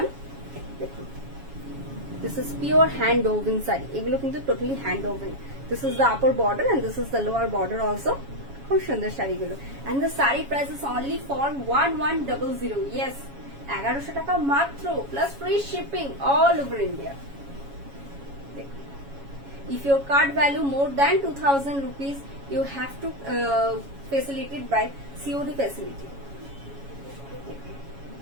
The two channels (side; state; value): left; late; 7.2 ms